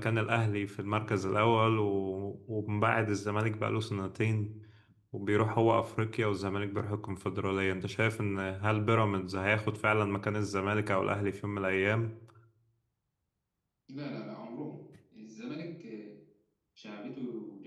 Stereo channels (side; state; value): both; identical; correlation 1.00